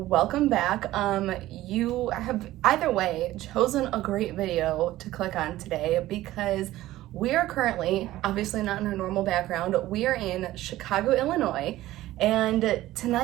back. You have either way chosen a great video to click on today because we are currently, obviously not in our normal background, we are in Chicago, Illinois, and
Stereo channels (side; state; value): left; quieter; 15.6 dB